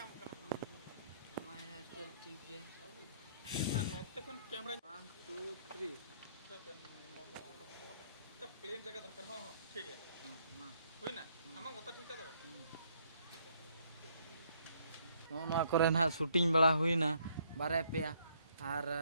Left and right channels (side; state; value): both; inverted; correlation -0.67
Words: कना हमारा हेयर स्टाइल ठीक है नोते कोन कैमरा 1 2 3 तो प्लेन जगह दरकार हां ठीक है हां हुई ना आमा गोता ठीक है नोना करे ना शूटिंग बड़ा हुईना बारे पे और